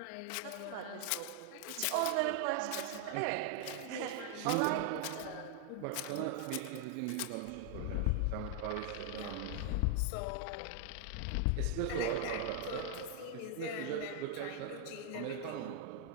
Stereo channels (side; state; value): both; different; correlation 0.00